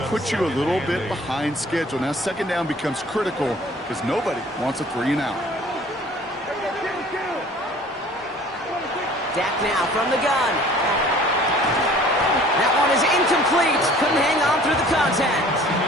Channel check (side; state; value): both; normal; correlation 0.51